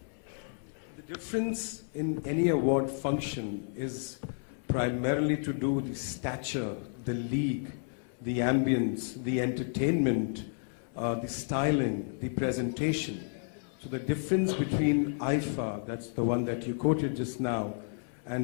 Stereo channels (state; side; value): silent; right; 57 dB below the other